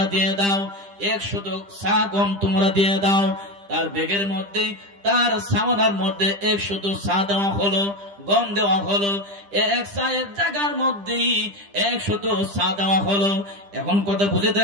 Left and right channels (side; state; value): left; late; 10 ms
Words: দিয়ে দাও, 100 সা গম তোমরা দিয়ে দাও। তার ব্যাগের মধ্যে, তার সামানার মধ্যে 100 সা দেওয়া হলো, গম দেওয়া হলো। এক সায়ের জায়গার মধ্যে 100 সা দেওয়া হলো। এখন কথা বুঝে